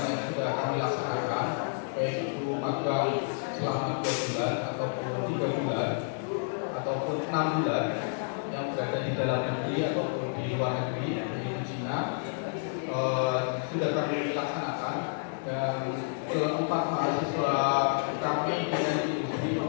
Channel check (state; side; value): silent; right; digital silence